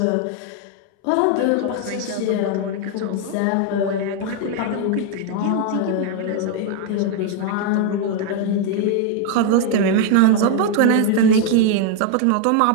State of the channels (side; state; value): both; different; correlation 0.00